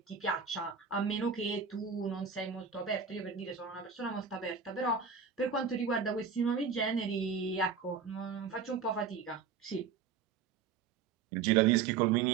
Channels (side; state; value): left; quieter; 6.1 dB